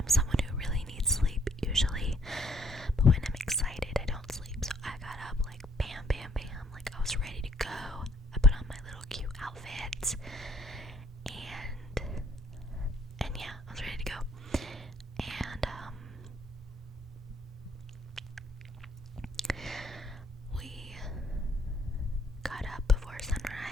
but when I'm excited, I don't sleep. So I got up like bam, bam, bam, like I was ready to go. I put on my little cute outfit, and yeah, I was ready to go. And we got up before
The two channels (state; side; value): normal; both; correlation 0.65